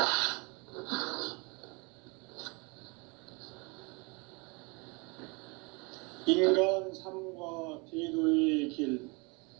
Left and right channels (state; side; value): quieter; left; 29.3 dB